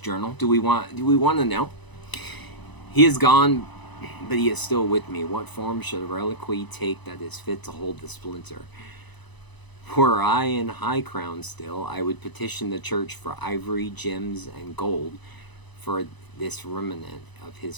Do we want to know? He is gone, but he is still with me. What form should a reliquary take that is fit to hold the splinter? Were I in High Crown still, I would petition the church for ivory, gems, and gold, for this remnant of his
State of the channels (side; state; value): right; late; 1.0 ms